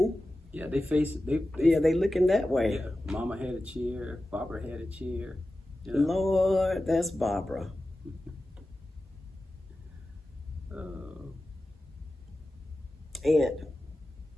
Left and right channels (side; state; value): both; normal; correlation 0.94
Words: Yeah, they face it. They looking that way. Yeah, Mama had a chair. Barbara had a chair. You know? Lord, that's Barbara. Aunt